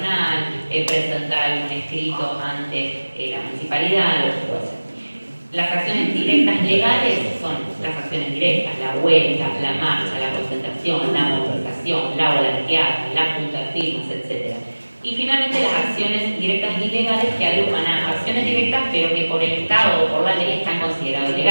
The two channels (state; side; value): inverted; both; correlation -1.00